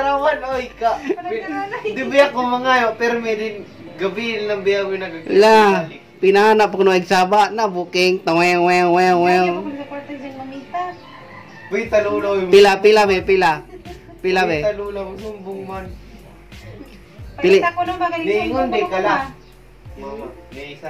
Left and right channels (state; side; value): identical; both; correlation 1.00